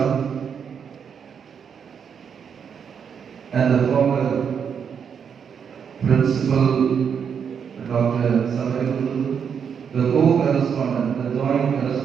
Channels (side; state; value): left; quieter; 7.2 dB